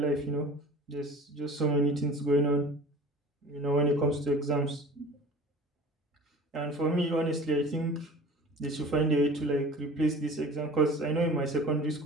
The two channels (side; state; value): both; normal; correlation 0.42